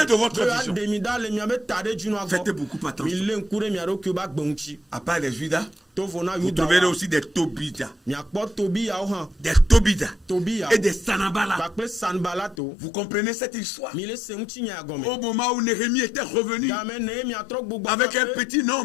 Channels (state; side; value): drops out; right; at 12.6 s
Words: de votre vision. Faites beaucoup attention. À part les Judas, vous trouverez aussi des Tobidas. Des Tobidas et des Sanballat. Vous comprenez cette histoire? Au moment où Néhémie était revenu avec un petit